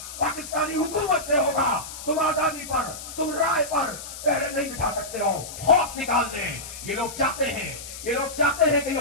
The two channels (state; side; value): noise; left; hiss, 11 dB below the sound